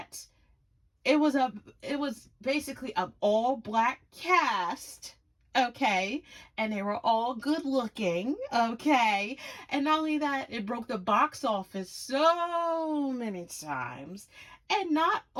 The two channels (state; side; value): identical; both; correlation 1.00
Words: it was basically an all black cast, okay, and they were all good looking, okay, and not only that, it broke the box office so many times. And not